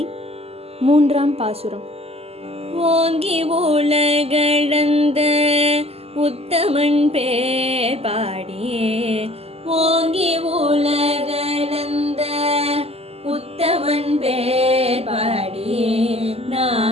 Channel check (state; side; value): late; left; 0.29 ms